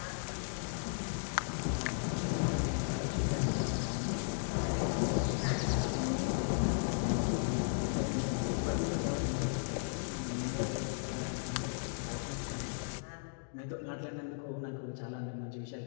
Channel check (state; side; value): silent; right; digital silence